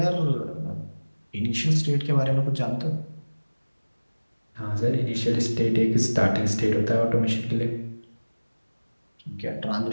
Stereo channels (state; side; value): inverted; both; correlation -1.00